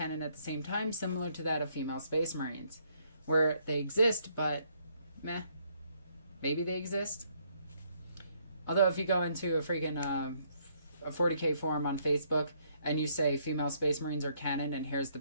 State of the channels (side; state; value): both; inverted; correlation -0.70